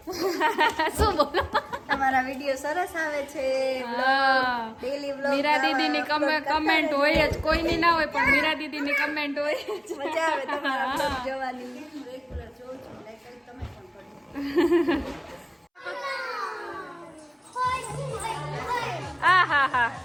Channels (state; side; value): identical; both; correlation 1.00